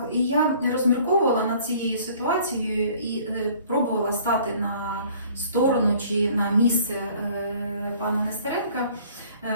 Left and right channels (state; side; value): inverted; both; correlation -0.54